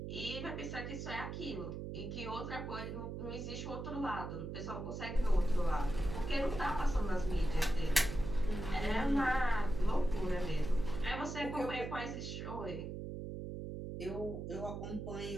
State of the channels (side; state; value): right; noise; hum, 6 dB below the sound